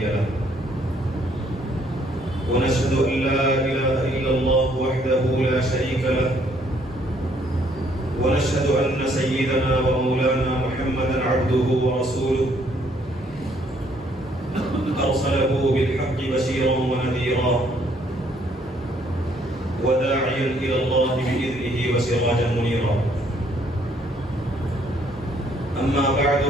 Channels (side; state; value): both; normal; correlation 0.66